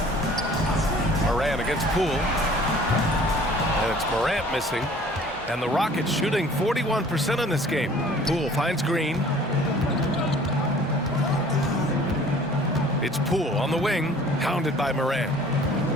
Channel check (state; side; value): normal; both; correlation 0.51